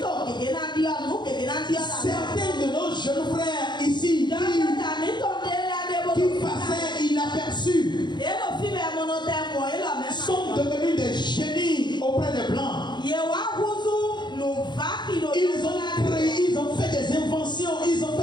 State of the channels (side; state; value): right; late; 0.21 ms